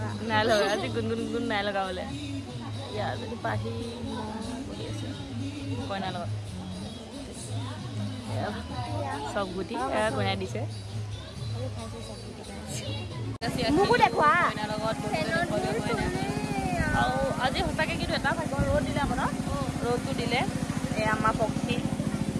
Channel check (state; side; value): identical; both; correlation 1.00